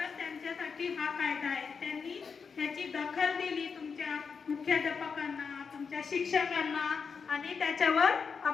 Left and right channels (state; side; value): quieter; right; 5.7 dB